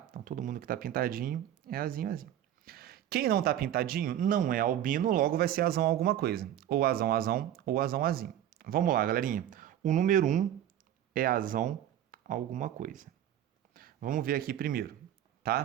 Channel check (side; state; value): left; quieter; 11.2 dB